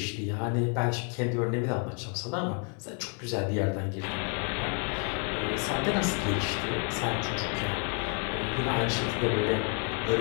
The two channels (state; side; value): quieter; right; 39.0 dB